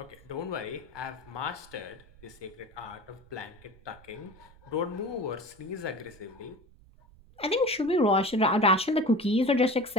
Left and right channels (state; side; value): noise; right; rumble, 24 dB below the sound